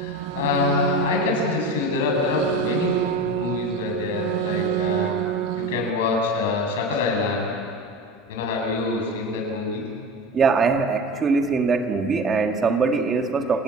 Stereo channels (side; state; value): both; normal; correlation 0.30